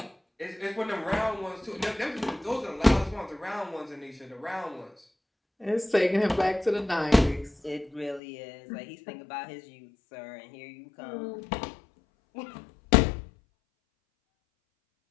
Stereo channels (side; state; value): right; drops out; at 8.2 s